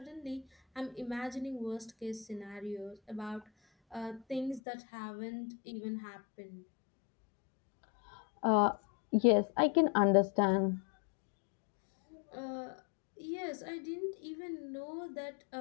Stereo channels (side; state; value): right; drops out; at 4.6 s